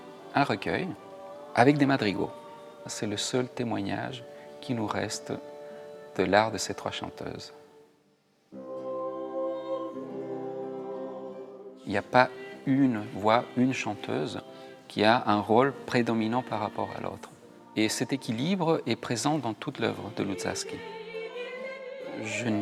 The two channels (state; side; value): identical; both; correlation 1.00